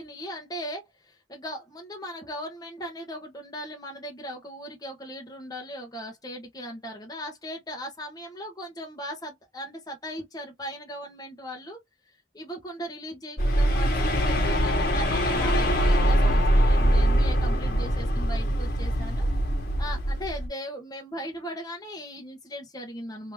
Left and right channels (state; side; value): normal; both; correlation 0.75